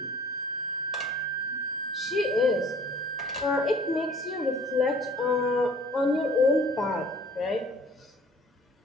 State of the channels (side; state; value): both; normal; correlation 0.51